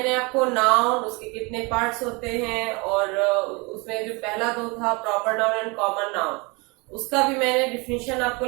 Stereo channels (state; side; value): quieter; left; 28.2 dB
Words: आपको नाउन, उसके कितने पार्ट्स होते हैं और उसमें जो पहला दो था proper noun and common noun, उसका भी मैंने डिफिनीशन आपको